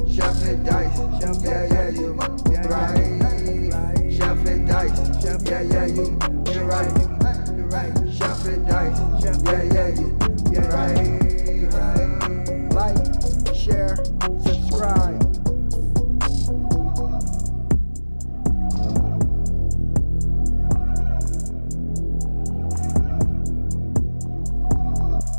Chef and dice, yeah, yeah, you my right. Chef and dice, yeah, yeah, you right. Chef and dice, yeah, yeah, you right. Like, share, subscribe.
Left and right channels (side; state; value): both; inverted; correlation -1.00